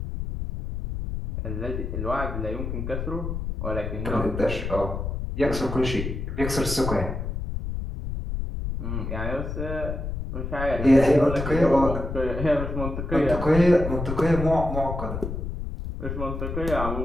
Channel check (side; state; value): left; noise; rumble, 4 dB below the sound